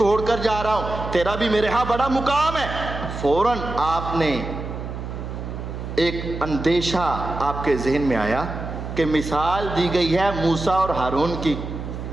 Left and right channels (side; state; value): right; noise; hum, 7 dB below the sound